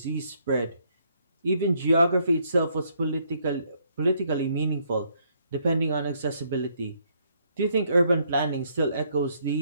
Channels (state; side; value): inverted; both; correlation -0.70